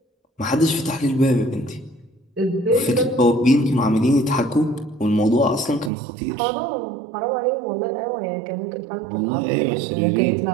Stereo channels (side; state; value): left; drops out; at 5.9 s